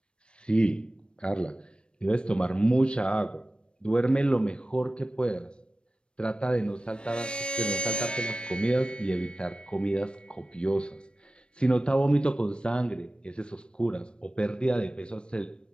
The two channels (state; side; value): late; right; 0.056 ms